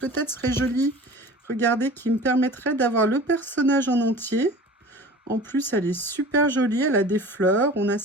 serait joli. Regardez, qui me permettrait d'avoir le personnage en entier. En plus, elle est super jolie, elle a des fleurs, on a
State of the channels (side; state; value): both; normal; correlation 0.40